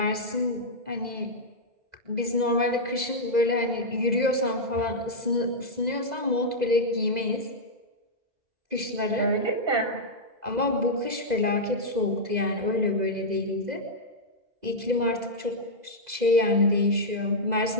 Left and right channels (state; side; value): late; left; 2.0 ms